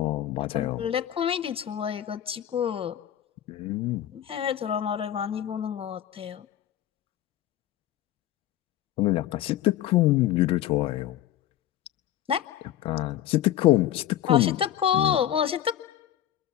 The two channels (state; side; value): quieter; right; 11.9 dB